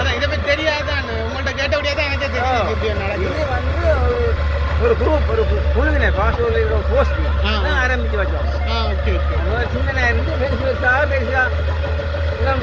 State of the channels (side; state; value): both; identical; correlation 1.00